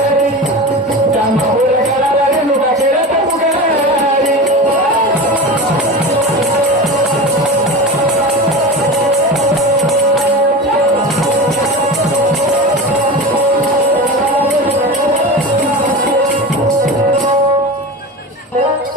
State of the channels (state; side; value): normal; both; correlation 0.28